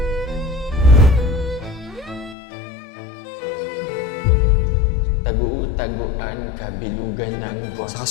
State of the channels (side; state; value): right; drops out; at 2.4 s